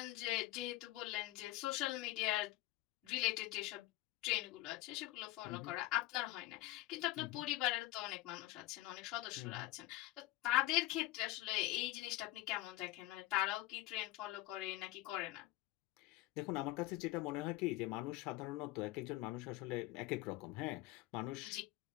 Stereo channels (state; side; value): quieter; right; 17.8 dB